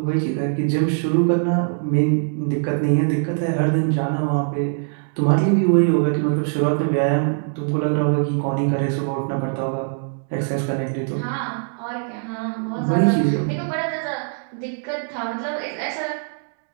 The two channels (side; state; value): left; silent; 64 dB below the other